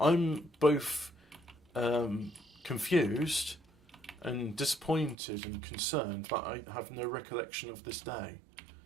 both confused and disappointed and concerned that I have no recollection of this day.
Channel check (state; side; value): drops out; left; at 5.2 s